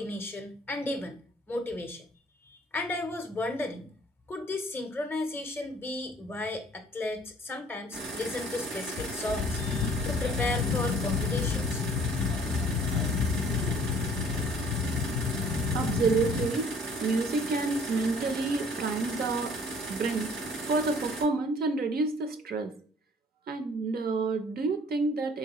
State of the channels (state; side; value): normal; both; correlation 0.55